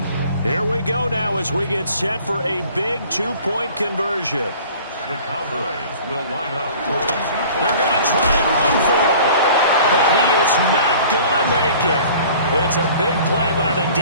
Here we go now as we get set for a big 2-point conversion. The Cowboys will line up for a 2-point. They're going to try and run for it, but he is not going to make it. It's a big play by the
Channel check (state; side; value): inverted; both; correlation -0.47